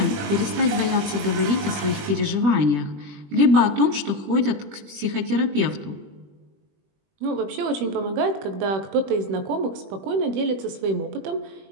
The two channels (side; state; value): left; late; 21 ms